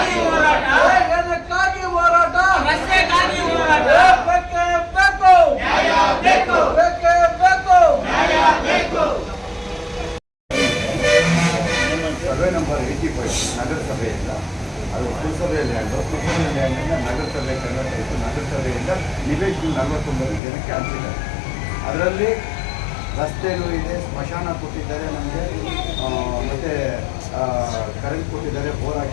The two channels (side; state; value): right; drops out; at 20.4 s